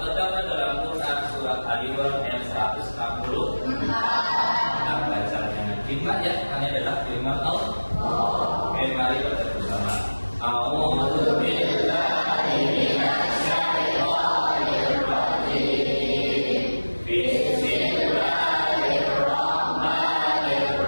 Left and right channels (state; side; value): inverted; both; correlation -1.00